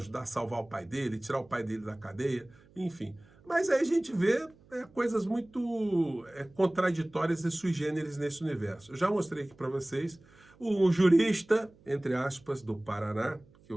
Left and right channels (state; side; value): noise; right; hum, 28 dB below the sound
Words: a salvar o pai dele, tirar o pai dele da cadeia, enfim. Mas aí a gente vê coisas muito contraditórias e sui generis nesse universo. Eu já mostrei aqui para vocês o jurista, entre aspas, do Paraná, que